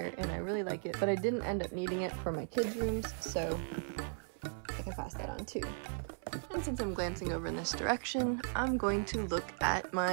and I really like it, but I didn't end up needing it for my kids' rooms, so I can pass that on too. And since I'm glancing over in this direction, I'm going to look at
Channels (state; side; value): silent; left; 53 dB below the other